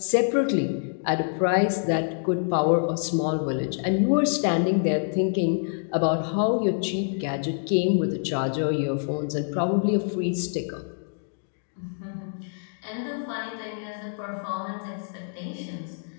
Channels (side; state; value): right; silent; digital silence